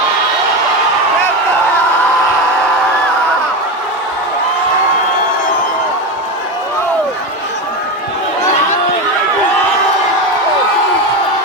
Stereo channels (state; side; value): normal; both; correlation 0.17